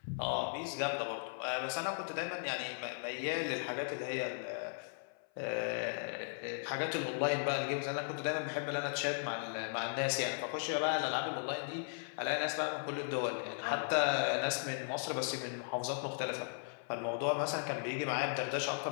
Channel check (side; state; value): right; silent; 53 dB below the other